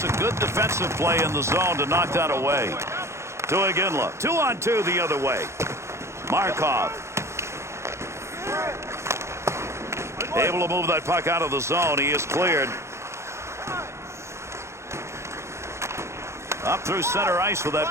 a good defensive play in the zone to knock that away. To Iginla. 2-on-2 the other way. Markov. Able to move that puck out of the zone. He is cleared. Up through center ice with that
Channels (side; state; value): left; late; 0.13 ms